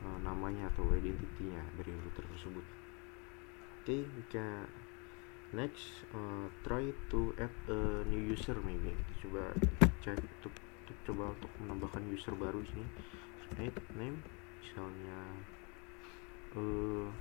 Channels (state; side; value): quieter; right; 32.5 dB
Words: namanya atau identitinya dari router tersebut. Okay, we can next try to add a new user maybe. Kita coba cek untuk menambahkan user baru di sini. Add name misalnya